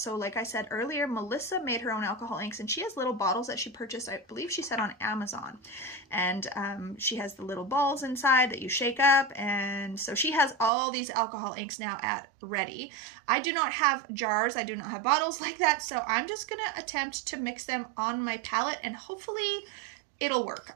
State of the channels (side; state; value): left; drops out; at 10.7 s